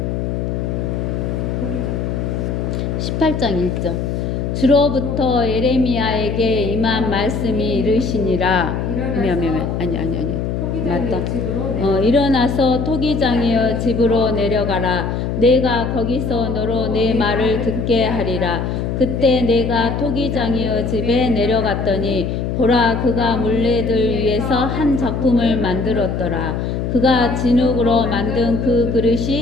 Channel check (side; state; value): left; noise; hum, 2 dB below the sound